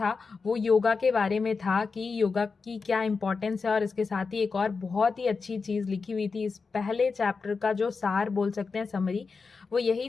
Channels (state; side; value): quieter; right; 4.7 dB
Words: वो योगा के बारे में था, कि योगा की क्या इंपॉर्टेंस है, और इसके साथ ही एक और बहुत ही अच्छी चीज़ लिखी हुई थी। इस पहले चैप्टर का जो सार बोल सकते हैं, समरी, वो यही